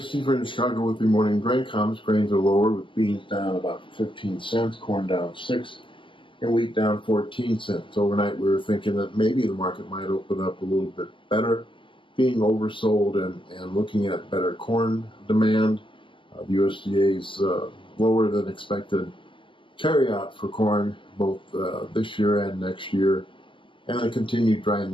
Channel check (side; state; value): right; late; 0.25 ms